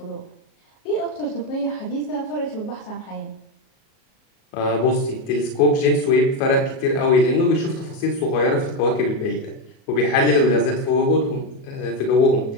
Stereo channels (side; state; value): right; late; 37 ms